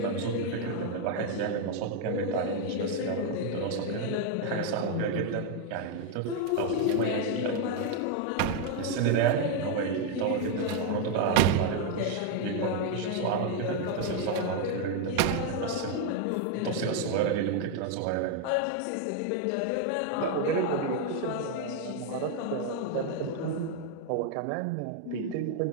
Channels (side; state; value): both; different; correlation 0.00